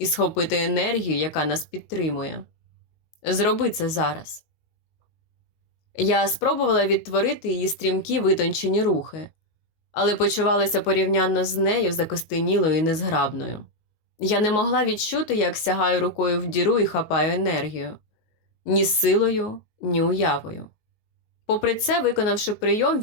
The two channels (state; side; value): late; right; 19 ms